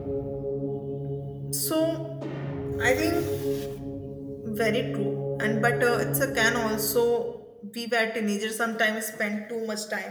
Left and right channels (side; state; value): both; identical; correlation 1.00